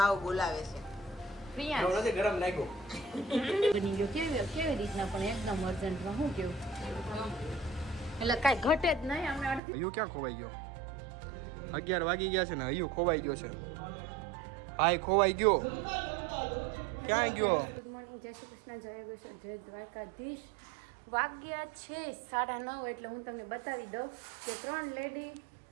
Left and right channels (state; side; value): drops out; left; at 9.6 s